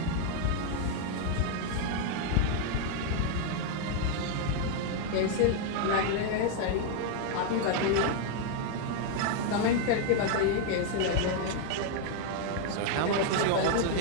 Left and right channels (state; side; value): different; both; correlation 0.00